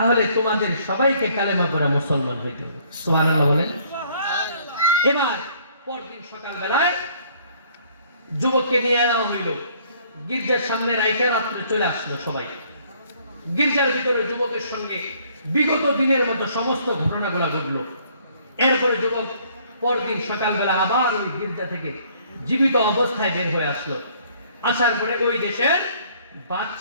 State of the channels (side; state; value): both; inverted; correlation -0.61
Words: তোমাদের সবাইকে কালেমা পড়া মুসলমান হইতে হবে। সুবহানাল্লাহ বলেন। এবার পরদিন সকালবেলায় যুবককে নিয়ে যাওয়া হইল, গির্জার সামনে রাইখা রাত্রে চলে আসলো সবাই। গির্জার ভিতরে যুবকের সঙ্গে বিগত দিনের মতো সমস্ত ঘটনাগুলো ঘটলো। এরপরে যুবক পরদিন সকালবেলা আবার ওই গির্জা থেকে জীবিত অবস্থায় বের হয়ে আসলো। আসার পরে ওই দেশের